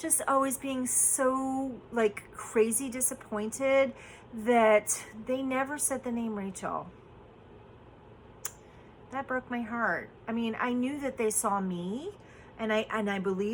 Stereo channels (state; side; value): identical; both; correlation 1.00